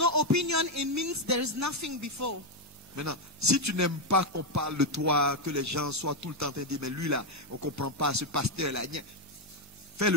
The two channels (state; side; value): normal; both; correlation 0.04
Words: opinion, it means there is nothing before. Maintenant, si tu n'aimes pas qu'on parle de toi, que les gens soient tout le temps en train de dire, mais lui là, on ne comprend pas, ce pasteur-là, fais